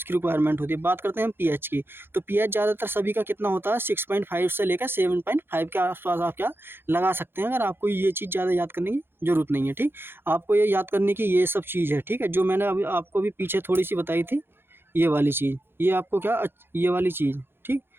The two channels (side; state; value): left; late; 0.10 ms